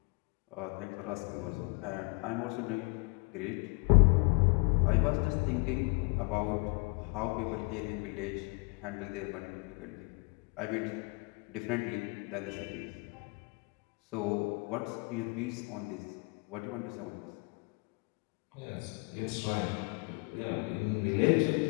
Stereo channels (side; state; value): right; quieter; 29.6 dB